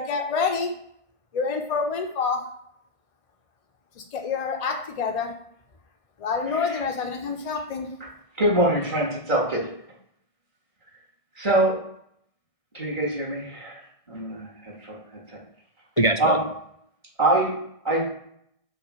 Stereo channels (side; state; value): right; late; 1.6 ms